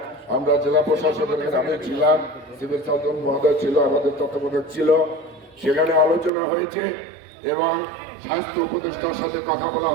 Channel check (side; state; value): left; drops out; at 6.3 s